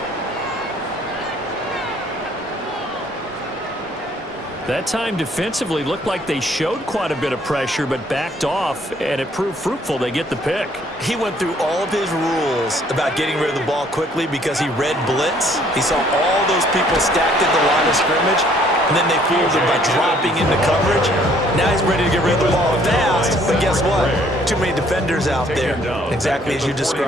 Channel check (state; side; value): normal; both; correlation 0.62